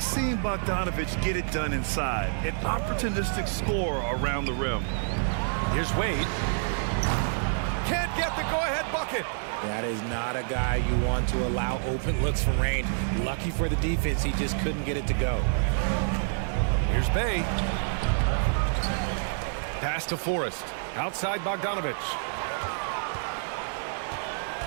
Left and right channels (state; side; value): silent; left; 59 dB below the other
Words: seeing Bogdanovic get it done inside. An opportunistic scorer around the rim. Here's Wade. Can't get the go-ahead bucket. That is not a guy you want to allow open looks from range. Lucky for the defense, he just couldn't get it to go. Here's Bey. Pass to Forrest. Outside Bogdanovic.